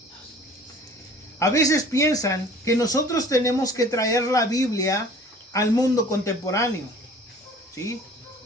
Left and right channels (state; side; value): normal; both; correlation 0.48